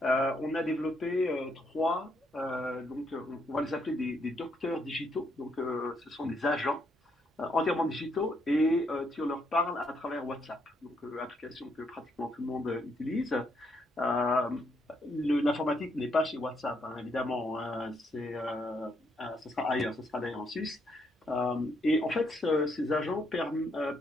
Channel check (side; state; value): both; normal; correlation 0.75